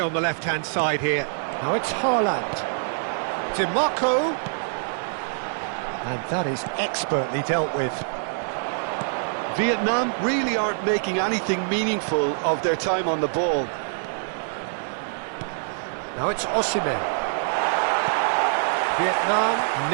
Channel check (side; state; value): left; silent; 57 dB below the other